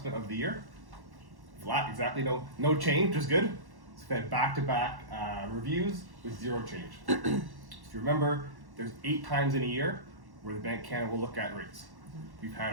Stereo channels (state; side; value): late; left; 1.1 ms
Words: of the year. Flat, exactly no change, which is good. It's been back-to-back reviews with zero change. If you remember, there's 8 times in a year where the Bank of Canada will look at rates. We've had